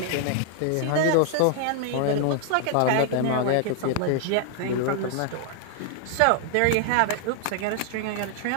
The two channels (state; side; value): different; both; correlation 0.00